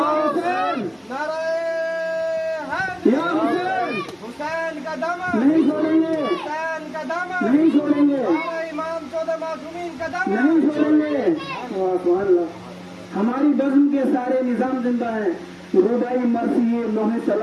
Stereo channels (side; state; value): both; identical; correlation 1.00